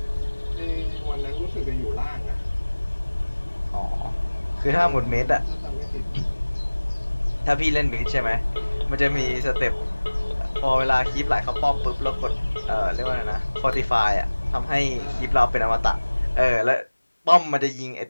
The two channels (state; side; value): inverted; both; correlation -1.00